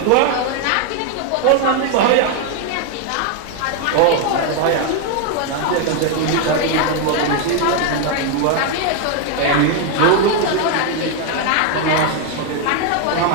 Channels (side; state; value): both; different; correlation 0.01